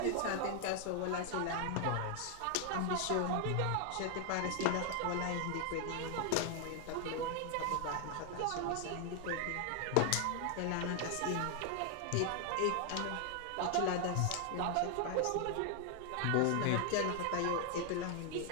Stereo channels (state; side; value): different; both; correlation 0.00